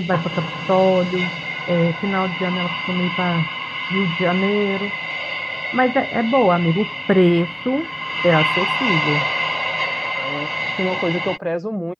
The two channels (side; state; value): both; identical; correlation 1.00